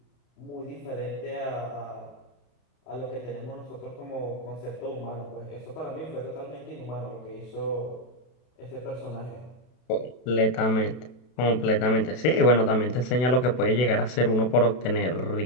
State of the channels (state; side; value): late; right; 32 ms